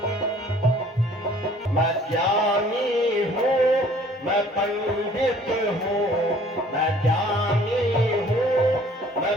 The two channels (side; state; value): both; normal; correlation 0.55